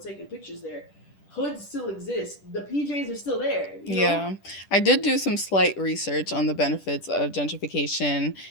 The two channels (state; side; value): late; right; 10 ms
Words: pictures there. Hoods still exist. The PJs are still there. You know? Yeah. I did do some slight research on the benefits of gentrification,